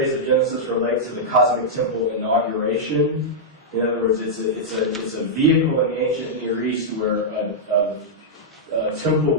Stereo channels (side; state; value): both; normal; correlation -0.08